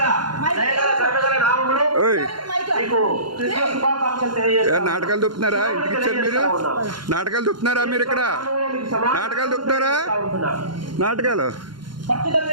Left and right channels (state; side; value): late; left; 0.72 ms